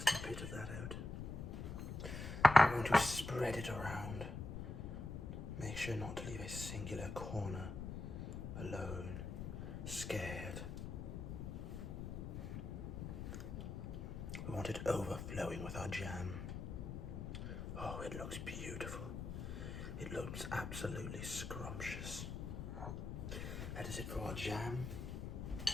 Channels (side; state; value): left; noise; rumble, 6 dB below the sound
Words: bit of that out. I'm going to spread it around. Make sure not to leave a singular corner alone, scared. We want it overflowing with our jam. Oh, it looks beautiful. It looks absolutely scrumptious. That is it for our jam.